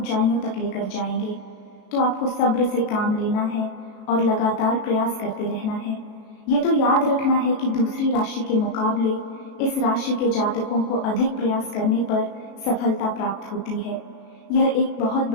तक लेकर जाएंगे। तो आपको सब्र से काम लेना है और लगातार प्रयास करते रहना है। ये तो याद रखना है कि दूसरी राशि के मुकाबले इस राशि के जातकों को अधिक प्रयास करने पर सफलता प्राप्त होती है। यह एक बहुत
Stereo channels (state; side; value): late; right; 37 ms